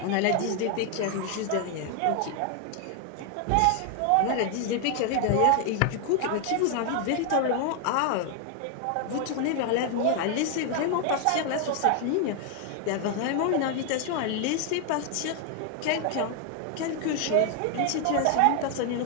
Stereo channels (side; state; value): both; different; correlation 0.00